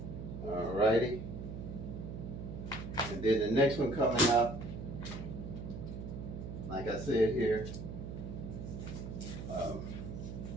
Alrighty. And then the next one coming up, like I said here,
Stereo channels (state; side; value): noise; right; hum, 7 dB below the sound